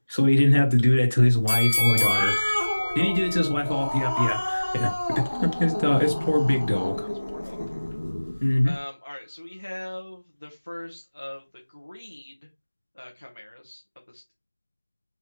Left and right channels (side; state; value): both; inverted; correlation -1.00